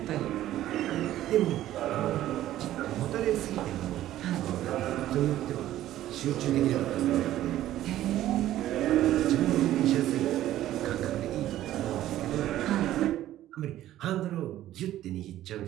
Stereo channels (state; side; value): quieter; left; 13.5 dB